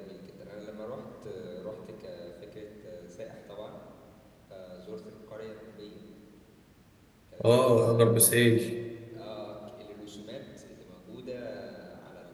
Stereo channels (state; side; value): identical; both; correlation 1.00